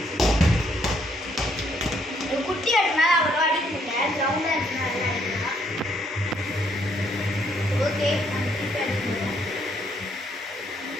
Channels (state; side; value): normal; both; correlation 0.70